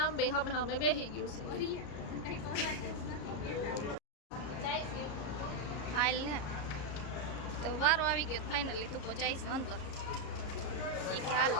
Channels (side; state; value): right; late; 34 ms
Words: બે અમે બેસી ગયું છે. હાલ ને તો વારો આવી ગયો ફાઇનલી. તું પહોંચાઈ છે અંદર. એ કે હાલો